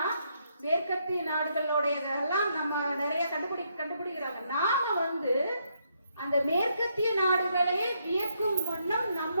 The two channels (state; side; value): inverted; both; correlation -0.76